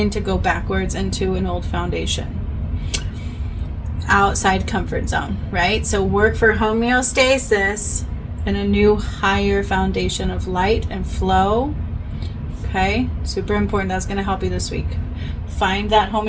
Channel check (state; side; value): identical; both; correlation 1.00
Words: to go backwards into an old foundation. Outside comfort zone, right? So work for homeostasis and a new higher foundation of light and flow. Okay, super important. That's going to help you this week. Find that